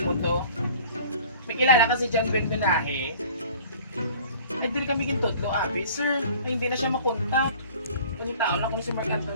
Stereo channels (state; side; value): inverted; both; correlation -0.48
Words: mo to, may kilala kasi dyan Ben Benahe. Ay din kami gintudlo, abi. Sir, ay hindi na siya makontak. Kung tao na kung si Mark